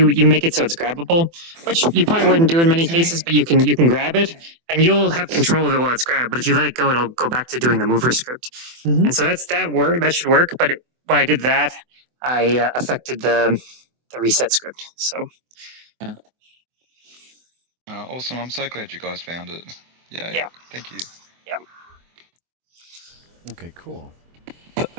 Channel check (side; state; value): left; late; 24 ms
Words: make it so it's grabbable, which you probably wouldn't do in many cases, but you can grab it, and you'll have control of it while it's grabbed. But if you let it go, it'll go back to doing the mover script, and so that should work. But when I did that, I affected the reset script. So. Awesome! I'm so glad you guys found it. Yeah. Thank you. Yeah. Okay, cool.